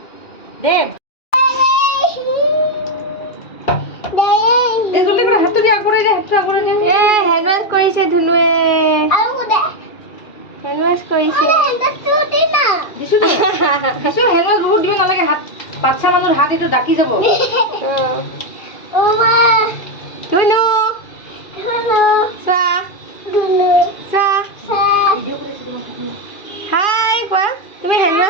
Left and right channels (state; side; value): late; right; 2.4 ms